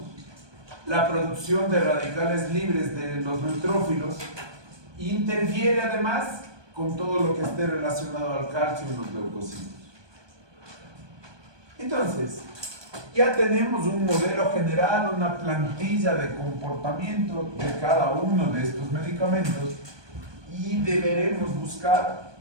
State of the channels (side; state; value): left; late; 1.2 ms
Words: la producción de radicales libres de los neutrófilos, e interfiere además con todo lo que esté relacionado al calcio en los leucocitos. Entonces, ya tenemos un modelo general, una plantilla de comportamiento de cada uno de estos medicamentos, y deberemos buscar